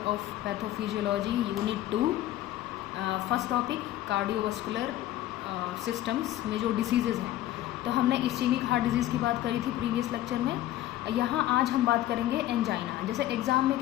of pathophysiology unit 2. First topic cardiovascular systems में जो diseases हैं, तो हमने इस्चेमिक हार्ट डिजीज़ की बात करी थी प्रीवियस लेक्चर में। यहाँ आज हम बात करेंगे एंजाइना। जैसे एग्ज़ाम में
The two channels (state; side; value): quieter; right; 14.1 dB